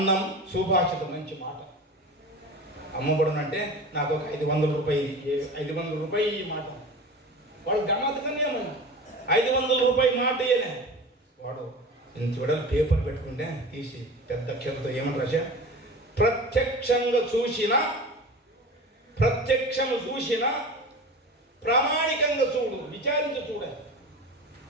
సుభాషితం. మంచి మాట. అమ్మబడునంటే నాకు ఒక 500 రూపాయలు ఈ మాట వాడు గమ్మత్తుగానే ఏమన్నా 500 రూపాయలు మాట ఇయ్యనే వాడు ఇంత చూడాలి పేపర్ పెట్టుకుంటే తీసి పెద్ద అక్షరంతో ఏమని రాశా ప్రత్యక్షము చూసిన ప్రామాణికంగా చూడు విచారించి చూడాలి.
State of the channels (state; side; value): normal; both; correlation 0.34